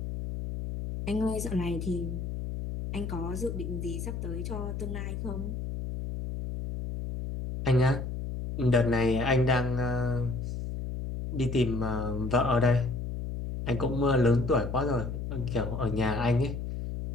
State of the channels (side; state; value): left; noise; hum, 5 dB below the sound